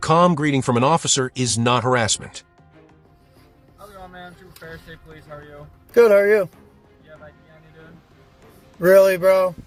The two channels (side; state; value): both; identical; correlation 1.00